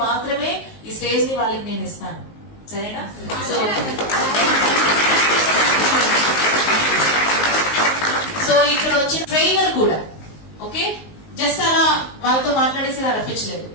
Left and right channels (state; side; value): late; right; 19 ms